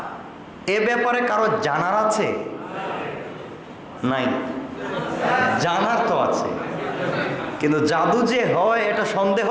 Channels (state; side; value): identical; both; correlation 1.00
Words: এ ব্যাপারে কারো জানার আছে? নাই, জানার তো আছে, কিন্তু জাদু যে হয় এটা সন্দেহ